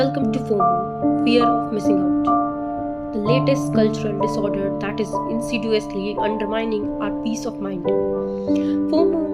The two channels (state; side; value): identical; both; correlation 1.00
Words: to FOMO, fear of missing out, the latest cultural disorder that is insidiously undermining our peace of mind.